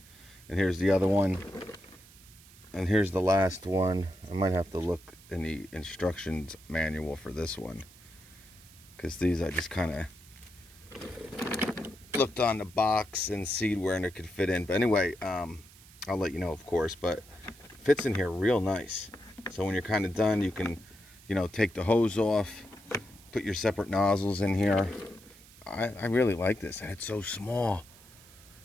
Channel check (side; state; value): right; noise; hiss, 23 dB below the sound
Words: And here's the other one. And here's the last one. I might have to look in the instructions manual for this one, because these I just kind of looked on the box and see where it could fit in. But anyway, I'll let you know, of course, but it fits in here real nice. So when you're kind of done, you can, you know, take the hose off, put your separate nozzles in here. I really like this, and it's so small.